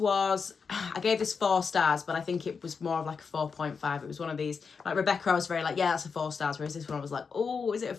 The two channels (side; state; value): right; quieter; 5.5 dB